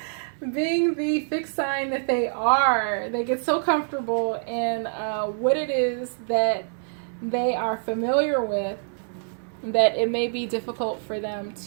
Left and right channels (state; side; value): silent; left; digital silence